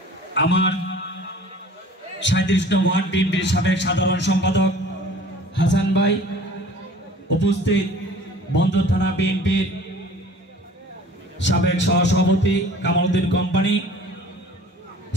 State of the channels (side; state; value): both; normal; correlation 0.47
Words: আমার ৩৭ নং ওয়ার্ড বিএনপির সাবেক সাধারণ সম্পাদক হাসান ভাই, উপস্থিত বন্দর থানা বিএনপির সাবেক সহসভাপতি কামালউদ্দিন কোম্পানি